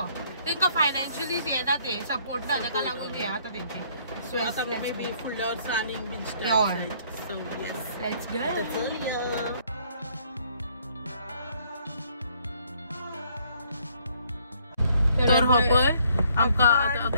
तांकां फायनान्शियली येना ते सपोर्ट ना ताका लागून हे आतां तेंचे So maybe full sunning beach time. So yes, let's go. तर हो पळय आमकां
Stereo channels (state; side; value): inverted; both; correlation -0.64